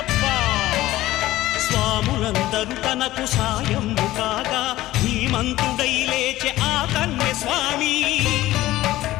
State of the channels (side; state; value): right; quieter; 16.1 dB